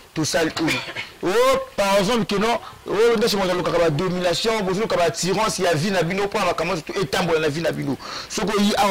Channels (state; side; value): identical; both; correlation 1.00